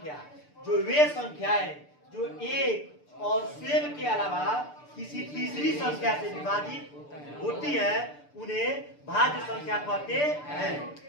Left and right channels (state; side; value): late; right; 6.8 ms